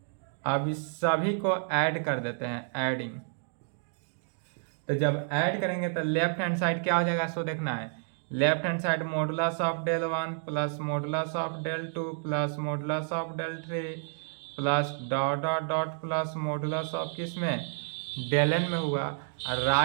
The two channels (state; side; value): silent; left; digital silence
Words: अब इस सभी को ऐड कर देते हैं, एडिंग। तो जब ऐड करेंगे तो लेफ्ट हैंड साइड क्या हो जाएगा, सो देखना है। Left hand side modulus of del 1 plus modulus of del 2 plus modulus of del 3 plus dot dot dot plus modulus of किस में, डेल n में हुआ। और